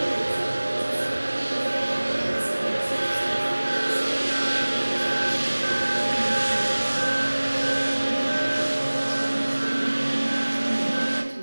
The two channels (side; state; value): both; inverted; correlation -1.00